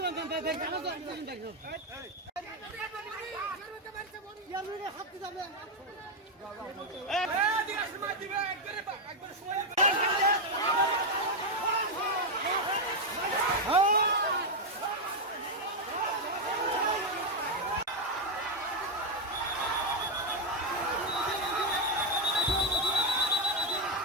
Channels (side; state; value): both; normal; correlation 0.03